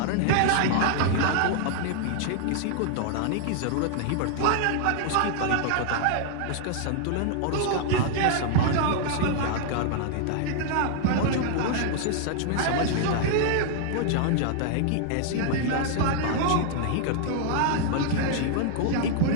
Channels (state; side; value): different; both; correlation 0.00